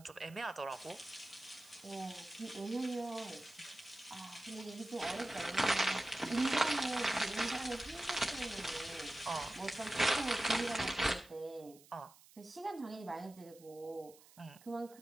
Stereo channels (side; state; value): right; noise; hiss, 23 dB below the sound